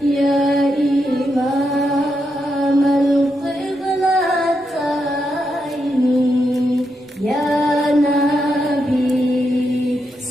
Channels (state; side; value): normal; both; correlation 0.83